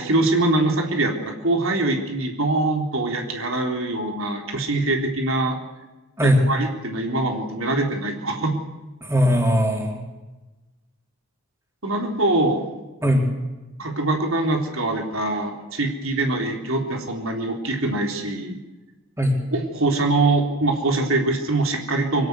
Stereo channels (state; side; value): normal; both; correlation 0.37